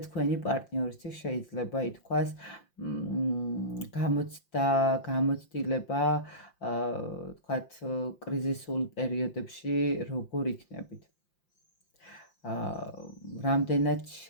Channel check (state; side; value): late; right; 5.7 ms